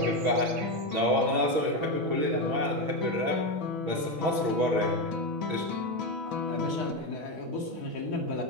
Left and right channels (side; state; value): left; late; 6.2 ms